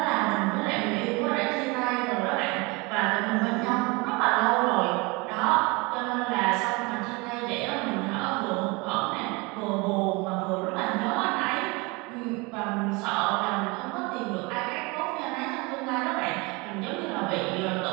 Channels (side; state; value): left; quieter; 26.5 dB